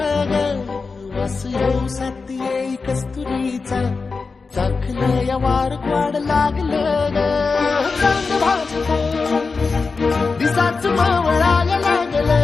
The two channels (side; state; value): right; quieter; 4.4 dB